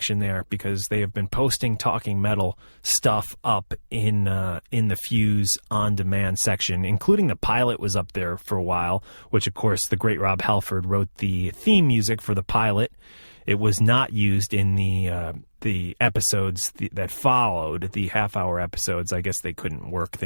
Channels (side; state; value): both; inverted; correlation -0.99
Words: there, because they have been posting Talking Metal stuff up in the Fuse on demand section, including the pilot was up there for a while, which of course the great Rob Halford wrote the theme music for the pilot. It was not used in the episodes that followed, the half-hour episodes. I guess they couldn't work